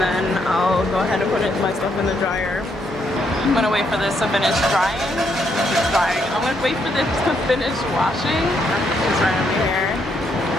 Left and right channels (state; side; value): noise; right; hum, 20 dB below the sound